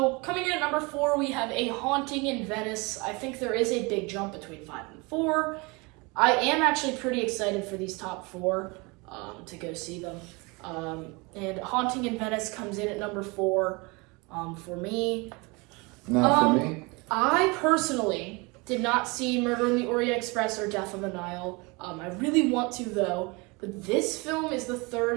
coming in at number 4, we have A Haunting in Venice. I think there is a big jump between 5 and 4. I am actually pretty excited for these top 4 to go see them. And Haunting in Venice comes in at number 4 for me. not for me. I personally did not see Murder in the Orient Express or Death on the Nile. I really want to, though. But this film is the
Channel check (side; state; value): left; quieter; 27.2 dB